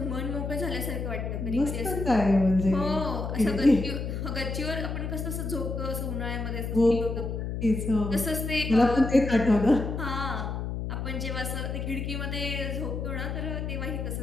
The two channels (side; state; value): left; noise; hum, 4 dB below the sound